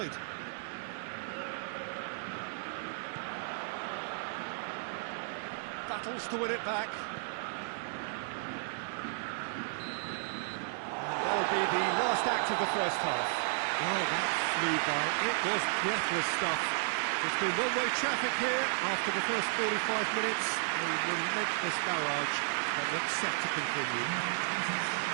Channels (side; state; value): left; silent; 55 dB below the other